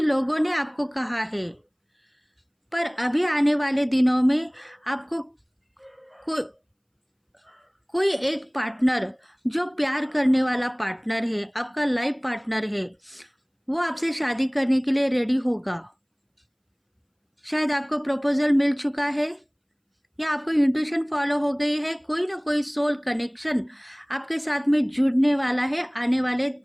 लोगों ने आपको कहा है, पर अभी आने वाले दिनों में आपको को, कोई एक पार्टनर जो प्यार करने वाला पार्टनर है, आपका लाइफ पार्टनर है, वो आपसे शादी करने के लिए रेडी होगा। शायद आपको प्रपोजल मिल चुका है, या आपको इंट्यूशन फॉलो हो गई है। कोई ना कोई सोल कनेक्शन आपके साथ में जुड़ने वाला है आने वाले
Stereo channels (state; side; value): identical; both; correlation 1.00